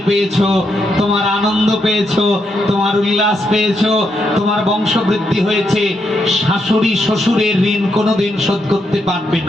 পেয়েছো, তোমার আনন্দ পেয়েছো, তোমার উল্লাস পেয়েছো, তোমার বংশবৃদ্ধি হয়েছে। শাশুড়ি শ্বশুরের ঋণ কোনোদিন শোধ করতে পারবে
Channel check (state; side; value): normal; both; correlation 0.80